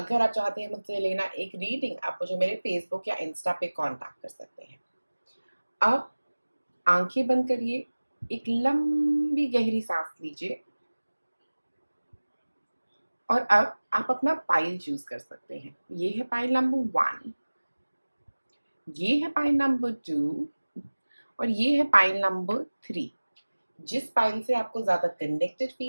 आप चाहते हैं मुझसे लेना एक रीडिंग, आप मुझे मेरे फेसबुक या इंस्टा पे कांटेक्ट कर सकते हैं। अब आंखें बंद करिए, एक लंबी गहरी सांस लीजिए और अब आप अपना पाइल चूज कर सकते हैं। ये है पाइल नंबर 1, ये है पाइल नंबर 2 और ये है पाइल नंबर 3। जिस पाइल से आपको ज्यादा कनेक्टेड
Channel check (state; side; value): inverted; both; correlation -1.00